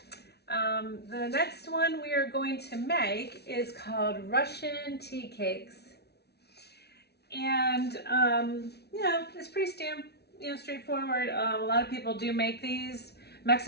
The next one we are going to make is called Russian tea cakes. And, it's pretty straightforward. A lot of people do make these.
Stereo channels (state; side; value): late; right; 0.48 ms